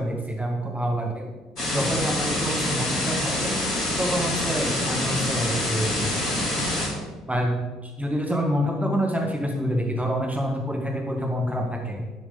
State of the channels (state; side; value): normal; both; correlation 0.68